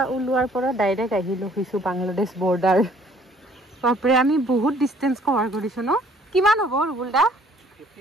ওলোৱাৰ পৰা ডাইৰেক্ট আহিলোঁ কিছু বাংলাদেশ বৰ্ডাৰ বাপৰে আমি বহুত ডিষ্টেঞ্চ কভাৰ কৰিছোঁ ন কিমান হ'ব ৰুবুলদা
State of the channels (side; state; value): both; normal; correlation 0.59